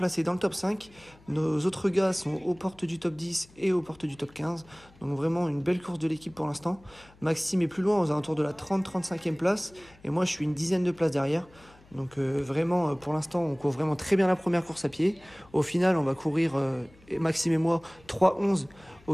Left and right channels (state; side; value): noise; left; hum, 26 dB below the sound